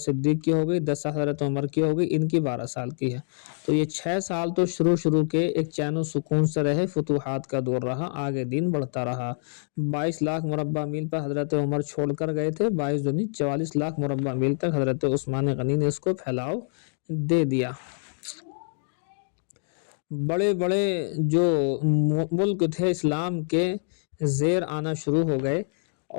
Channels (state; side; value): silent; right; digital silence